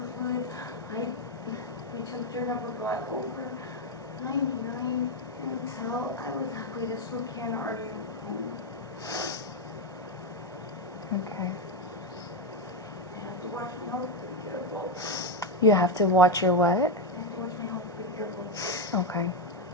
fluid. My temperature never got over 99 until I was halfway to Spokane, already home. okay. I have to watch my health, be careful. You have to watch your what? I have to watch my health, be careful. Okay.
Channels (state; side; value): normal; both; correlation 0.06